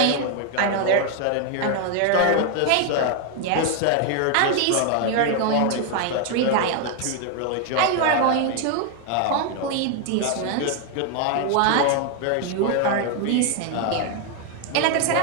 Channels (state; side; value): different; both; correlation 0.01